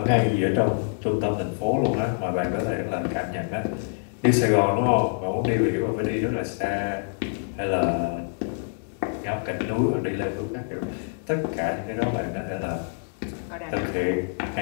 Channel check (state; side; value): silent; right; digital silence